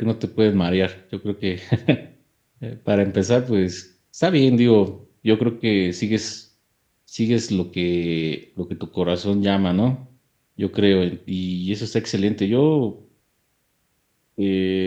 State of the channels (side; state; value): both; identical; correlation 1.00